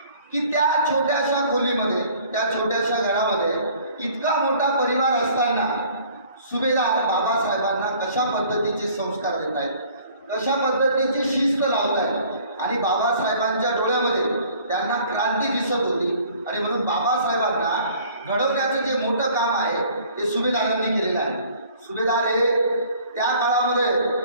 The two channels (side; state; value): both; inverted; correlation -0.53